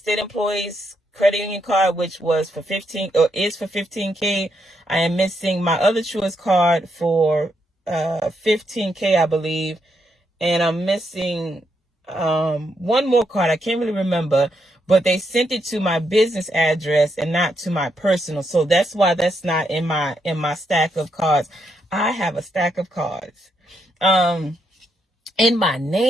employees credit union card, which was for 15 or is for 15K. I am missing my other Truist card for 15K, I believe. And I'm missing one more card. I can't really remember, but they sent it to my business address and not to my personal. So that's why that's not in my stack of cards. I have a stack of cards in my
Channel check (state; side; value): normal; both; correlation 0.79